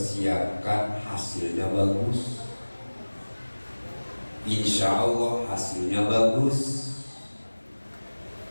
hasilnya bagus. Insya Allah hasilnya bagus.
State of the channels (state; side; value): inverted; both; correlation -1.00